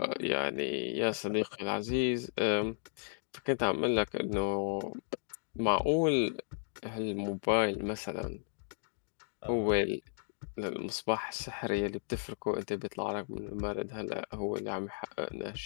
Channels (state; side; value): silent; right; digital silence